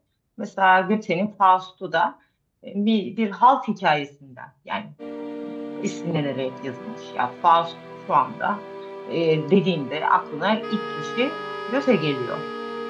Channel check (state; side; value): identical; both; correlation 1.00